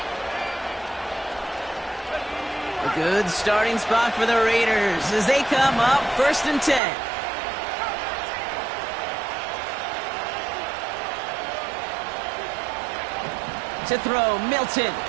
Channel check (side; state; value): left; drops out; at 6.8 s